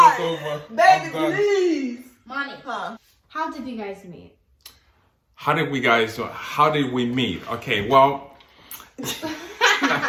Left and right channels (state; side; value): identical; both; correlation 1.00